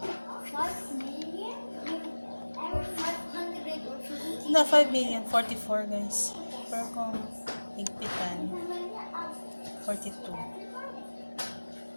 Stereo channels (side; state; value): both; inverted; correlation -1.00